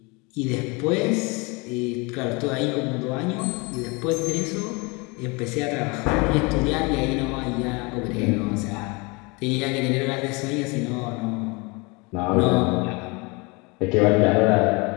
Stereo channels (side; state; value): right; quieter; 28.2 dB